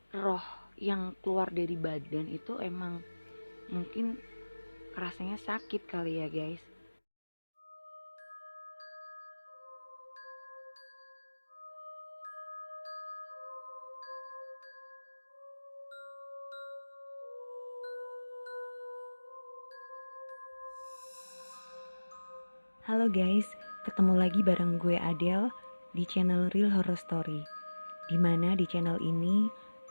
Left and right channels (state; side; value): inverted; both; correlation -1.00